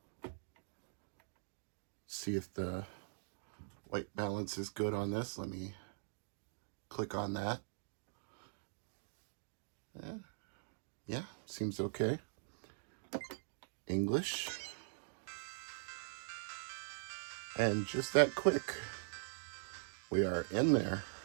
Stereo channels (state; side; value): silent; left; digital silence